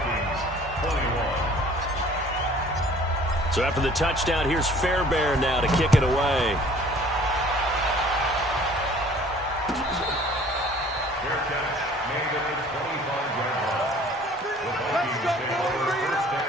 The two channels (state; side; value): normal; both; correlation 0.52